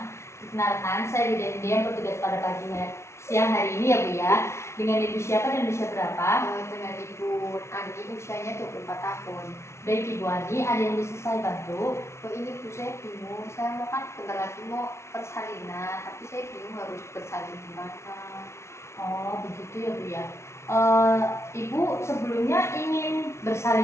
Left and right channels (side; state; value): right; late; 0.13 ms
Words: Perkenalkan, saya Widya yang bertugas pada siang hari ini ya Bu ya. Dengan Ibu siapa dan usia berapa? Dengan Ibu Ani, usianya 24 tahun. Baik Ibu Ani, ada yang bisa saya bantu? Ini Bu, saya bingung. Saya mau kan bentar lagi mau persalinan, tapi saya bingung harus bersalin di mana. Oh begitu ya Bu ya. Ibu sebelumnya ingin